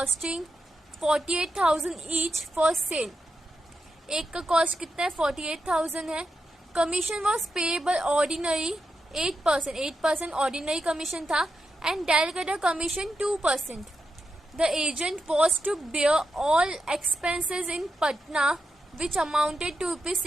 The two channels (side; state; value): both; normal; correlation 0.87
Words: 48,000 each for sale. एक का कॉस्ट कितना है? 48,000 है। Commission was payable ordinary 8% ordinary commission था and direct commission 2%। The agent was to bear all expenses in Patna which amounted to